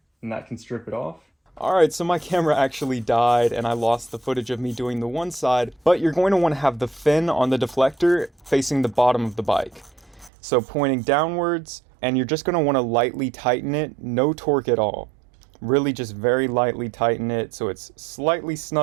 and that can strip it off. All right, so my camera actually died and I lost the footage of me doing the one side, but you're going to want to have the fin on the deflector facing the bottom of the bike. So pointing downwards, and you're just going to want to lightly tighten it, no torque at all. Really just very lightly tighten it so it's slightly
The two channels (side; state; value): left; drops out; at 10.3 s